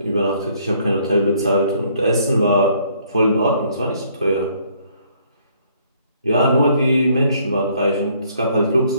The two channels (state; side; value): inverted; both; correlation -0.65